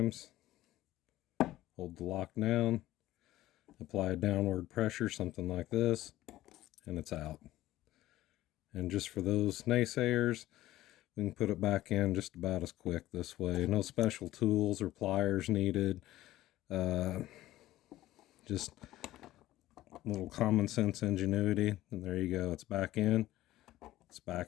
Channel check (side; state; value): right; quieter; 15.4 dB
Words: hold the lock down, apply a downward pressure, something like this, and it's out. And just for those naysayers, we can put it back in just about as quick this way. No special tools or pliers needed. Just a little common sense ingenuity. And there you go. It's back in. It's